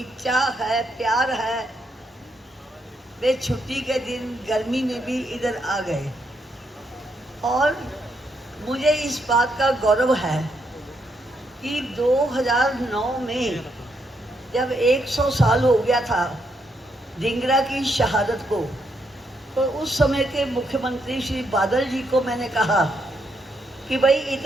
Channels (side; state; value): both; normal; correlation 0.78